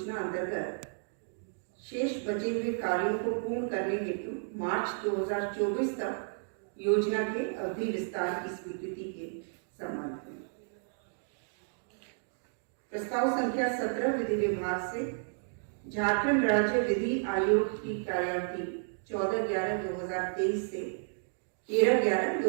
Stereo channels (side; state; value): left; silent; digital silence